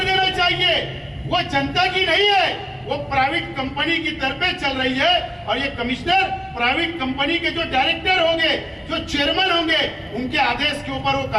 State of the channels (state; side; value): identical; both; correlation 1.00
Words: देना चाहिए। वो जनता की नहीं है, वो प्राइवेट कंपनी की तरफ चल रही है। और ये कमिश्नर प्राइवेट कंपनी के जो डायरेक्टर होंगे, जो चेयरमैन होंगे, उनके आदेश के ऊपर वो